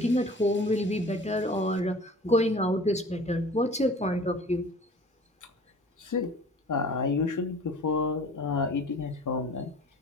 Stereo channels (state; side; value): normal; both; correlation 0.45